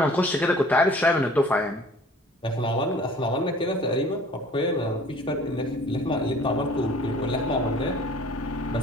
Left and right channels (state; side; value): normal; both; correlation 0.49